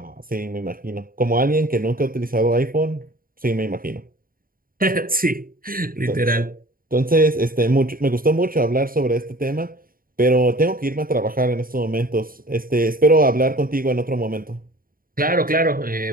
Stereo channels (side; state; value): left; late; 0.41 ms